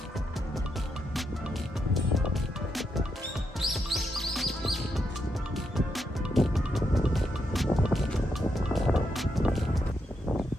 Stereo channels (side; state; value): both; normal; correlation 0.81